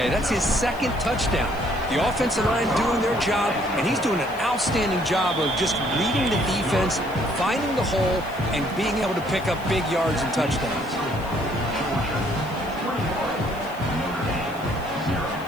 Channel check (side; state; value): left; noise; hiss, 23 dB below the sound